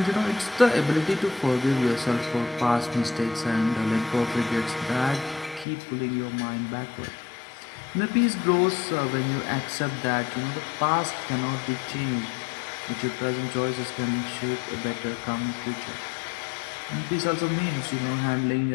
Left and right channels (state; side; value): drops out; right; at 5.7 s